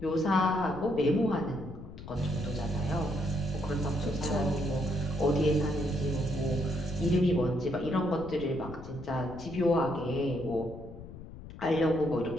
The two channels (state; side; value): noise; left; rumble, 14 dB below the sound